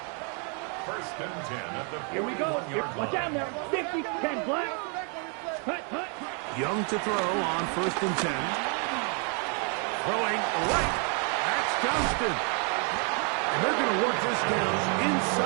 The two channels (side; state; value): left; quieter; 38.7 dB